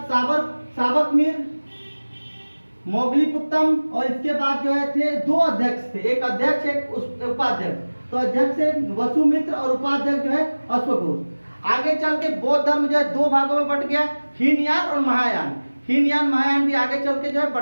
साबकमीर, मोगलीपुत्तम, और इसके बाद जो है थे 2 अध्यक्ष थे, एक अध्यक्ष एक उपाध्यक्ष। तो अध्यक्ष है वसुमित्र और उपाध्यक्ष जो है अश्वघोष। आगे चल के बौद्ध धर्म जो है 2 भागों में बट गया, हीनयान और महायान। हीनयान महायान भी आगे चल के जो है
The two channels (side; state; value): both; inverted; correlation -1.00